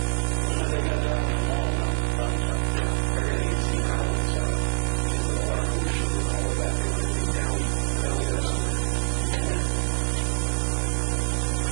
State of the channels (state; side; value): silent; left; digital silence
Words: But they got down on the mall now, downtown. Yeah. Everything you see now is because of the light pollution and all of that, they want everything down there somewhere. Yeah.